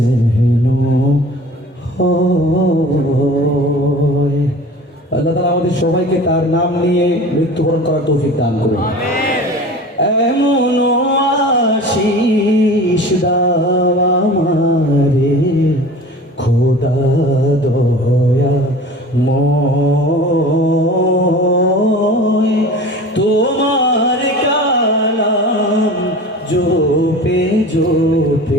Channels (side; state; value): both; normal; correlation 0.39